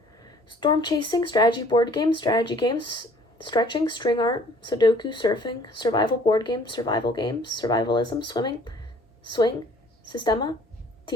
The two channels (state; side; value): normal; both; correlation 0.55